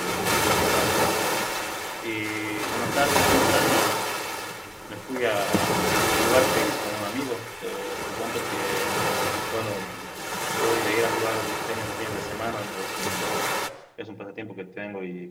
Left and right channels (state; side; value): identical; both; correlation 1.00